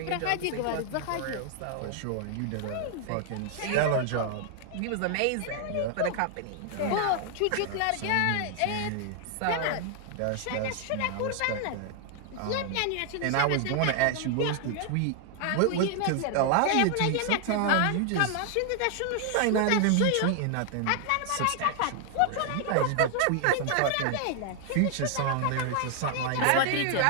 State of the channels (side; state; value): both; different; correlation 0.00